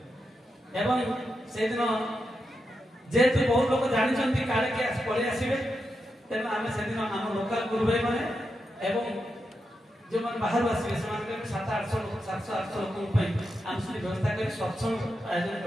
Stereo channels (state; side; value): normal; both; correlation 0.86